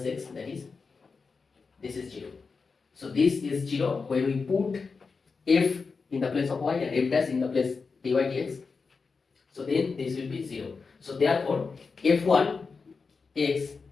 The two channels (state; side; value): quieter; right; 4.8 dB